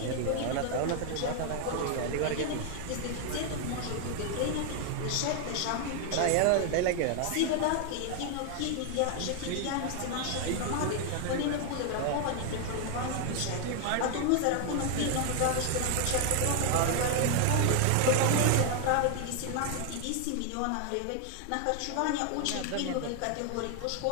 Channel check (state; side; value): different; both; correlation 0.00